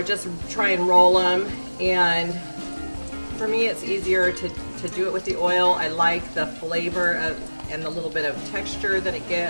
just try and roll them. And for me, it's easier to do it with the oil. I like the flavor and the little bit of texture that it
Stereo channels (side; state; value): both; inverted; correlation -1.00